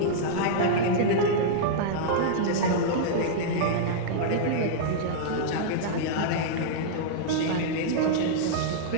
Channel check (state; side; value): different; both; correlation -0.02